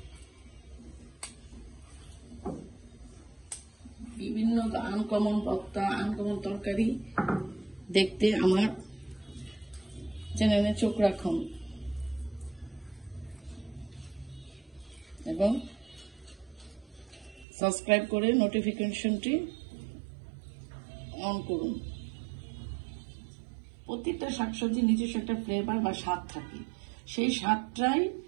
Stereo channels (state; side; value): drops out; left; at 17.4 s